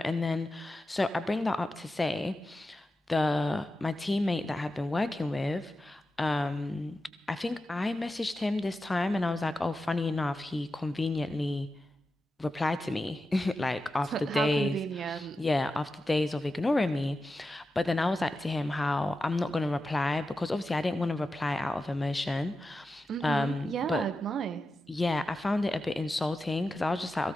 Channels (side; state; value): both; normal; correlation 0.91